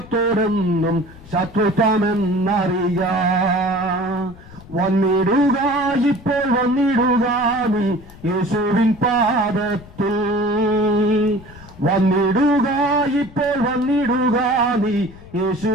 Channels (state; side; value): noise; left; rumble, 20 dB below the sound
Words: ശത്രുത്വമെന്നറിയാം. വന്നിടുക, ഇപ്പോൾ വന്നിടുക നീ യേശുവിൻ പാദത്തിൽ. വന്നിടുക, ഇപ്പോൾ വന്നിടുക നീ